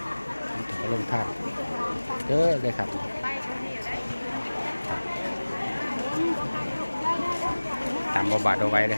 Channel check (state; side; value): inverted; both; correlation -1.00